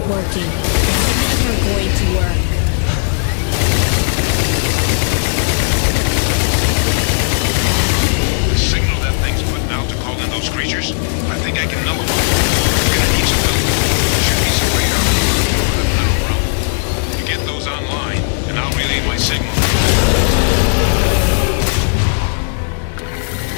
working. It's never going to work. The signal that thing's putting out to call in those creatures, I think I can nullify it. We're gonna need some help. There should be some way out of the tunnel room. You get those online, and I'll relay my signal.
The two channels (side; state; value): right; silent; digital silence